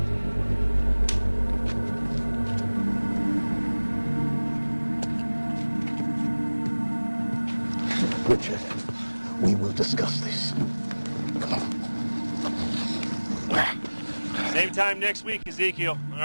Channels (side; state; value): both; inverted; correlation -1.00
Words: Richard, we will discuss this. Come on. Same time next week, Ezekiel, all